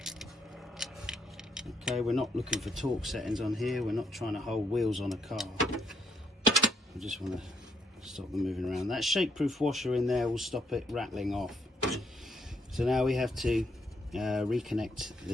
Okay, we're not looking for torque settings on here. We're not trying to hold wheels on a car. We just want to stop them moving around. That shake-proof washer in there will stop it rattling off. So now we have to reconnect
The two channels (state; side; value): normal; both; correlation 0.74